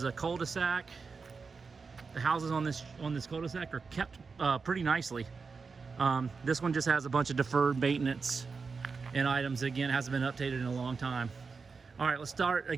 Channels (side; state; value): left; quieter; 4.9 dB